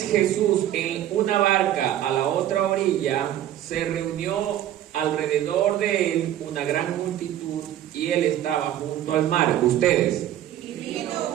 Jesús en una barca a la otra orilla, se reunió alrededor de él una gran multitud y él estaba junto al mar. Ustedes. Y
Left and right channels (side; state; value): left; quieter; 12.0 dB